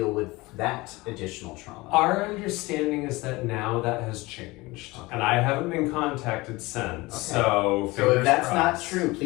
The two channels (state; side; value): quieter; right; 22.0 dB